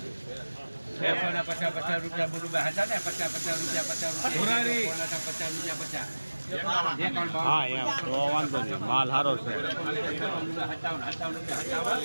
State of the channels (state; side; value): inverted; both; correlation -1.00